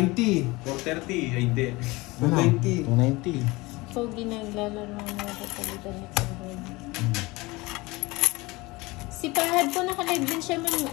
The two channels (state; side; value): quieter; right; 22.6 dB